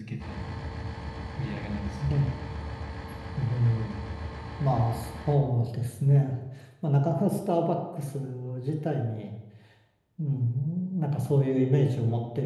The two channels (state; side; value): identical; both; correlation 1.00